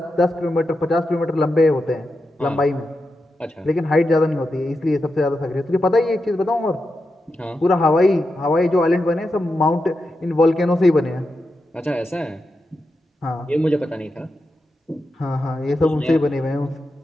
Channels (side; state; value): both; normal; correlation 0.88